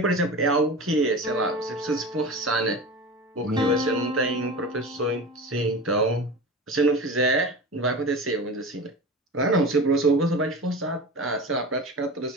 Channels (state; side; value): normal; both; correlation 0.31